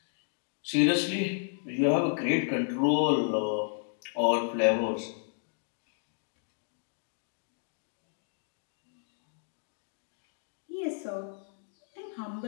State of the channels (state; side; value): silent; right; 56 dB below the other